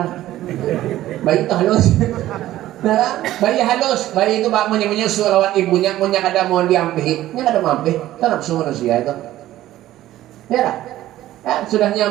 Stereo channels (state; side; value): quieter; left; 14.3 dB